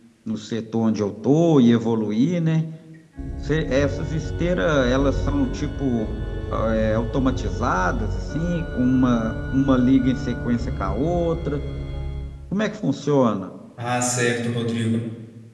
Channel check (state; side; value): identical; both; correlation 1.00